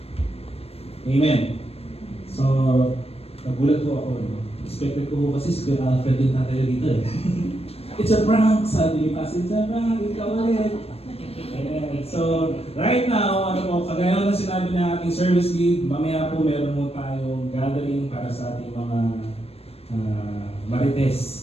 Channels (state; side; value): late; right; 0.29 ms